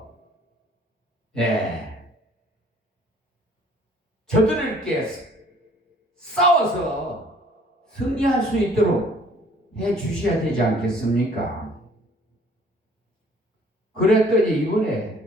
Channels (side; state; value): both; normal; correlation 0.57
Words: 저들에게 싸워서 승리할 수 있도록 해 주셔야 되지 않겠습니까? 그랬더니